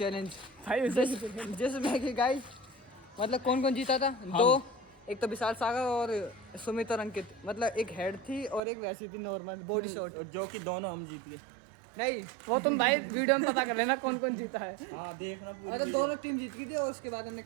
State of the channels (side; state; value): left; drops out; at 8.6 s